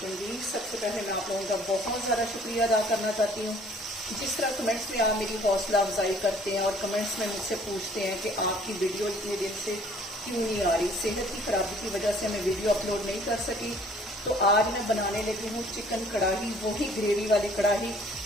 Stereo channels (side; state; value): both; normal; correlation 0.56